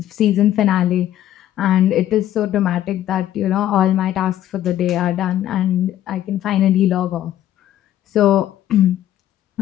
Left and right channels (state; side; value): quieter; right; 12.3 dB